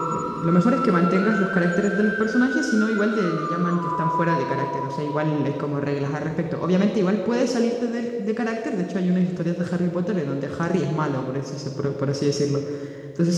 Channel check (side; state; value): both; identical; correlation 1.00